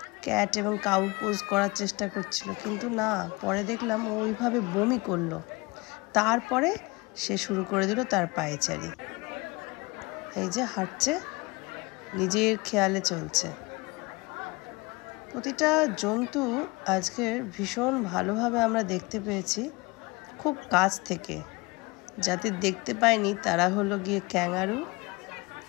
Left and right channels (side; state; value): right; quieter; 24.9 dB